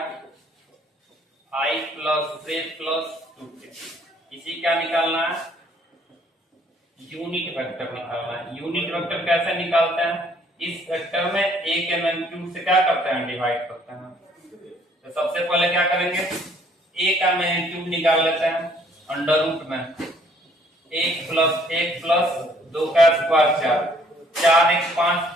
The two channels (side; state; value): both; normal; correlation 0.62